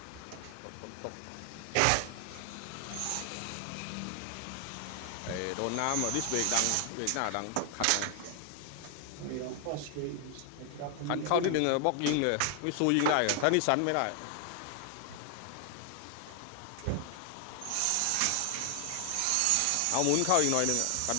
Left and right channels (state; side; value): different; both; correlation 0.00